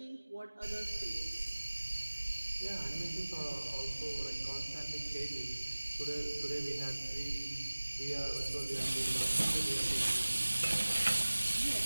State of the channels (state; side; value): inverted; both; correlation -1.00